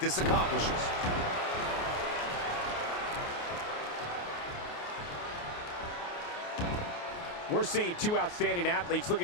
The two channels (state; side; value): late; right; 29 ms